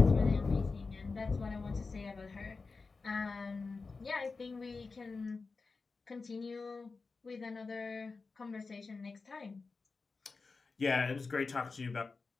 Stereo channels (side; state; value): right; quieter; 4.2 dB